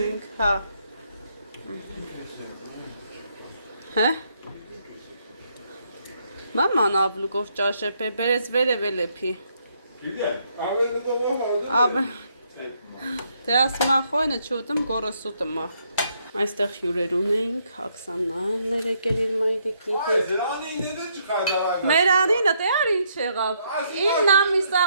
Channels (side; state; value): both; inverted; correlation -0.73